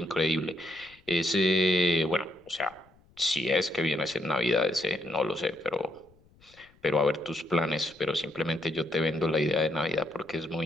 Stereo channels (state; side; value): noise; left; rumble, 30 dB below the sound